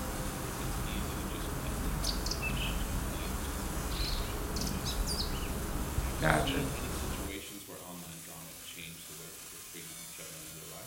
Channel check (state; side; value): identical; both; correlation 1.00